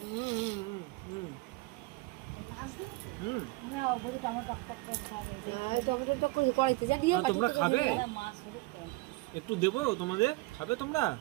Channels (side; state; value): left; quieter; 22.3 dB